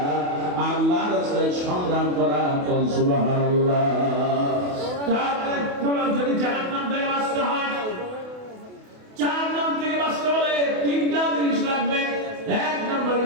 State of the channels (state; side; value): late; left; 28 ms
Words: আল্লাহর রাস্তায় সংগ্রাম করা। সুবহানাল্লাহ। তারপরে যদি জাহান্নাম থেকে বাঁচতে হয়, জাহান্নাম থেকে বাঁচতে হলে 3টা জিনিস লাগবে। 1 নম্বর